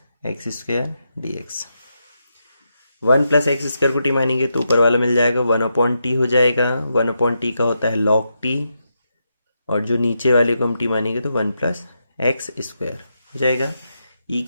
x square D x. 1 plus x square को टी मानेंगे तो ऊपर वाला मिल जाएगा 1 अपॉन टी हो जाएगा, 1 अपॉन टी का होता है लॉग टी, और जो नीचे वाले को हम टी मानेंगे तो 1 प्लस एक्स स्क्वायर हो जाएगा। ई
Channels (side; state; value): both; inverted; correlation -0.84